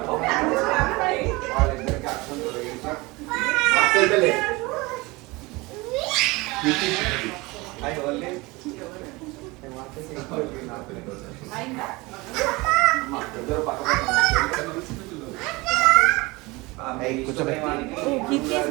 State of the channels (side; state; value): left; quieter; 23.4 dB